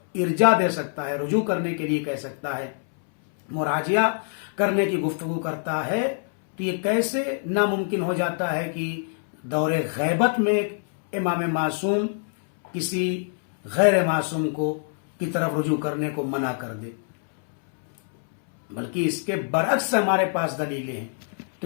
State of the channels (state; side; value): silent; right; 62 dB below the other